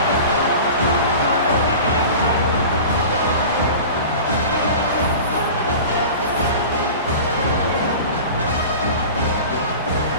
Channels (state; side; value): inverted; both; correlation -0.36